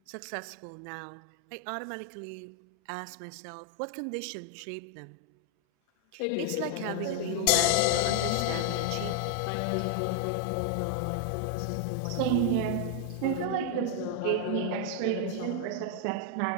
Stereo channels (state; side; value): different; both; correlation 0.00